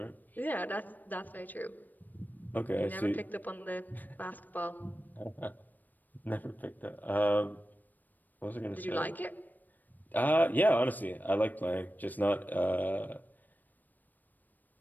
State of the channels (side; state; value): right; late; 0.087 ms